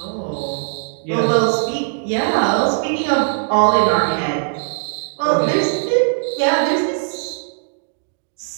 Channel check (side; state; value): left; silent; digital silence